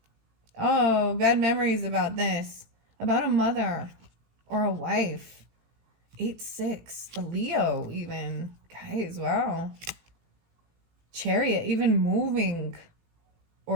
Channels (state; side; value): late; left; 18 ms